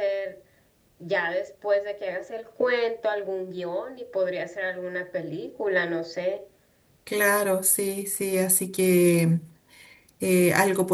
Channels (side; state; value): both; identical; correlation 1.00